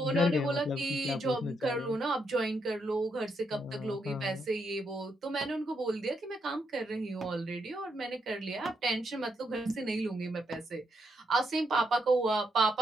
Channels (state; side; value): normal; both; correlation 0.79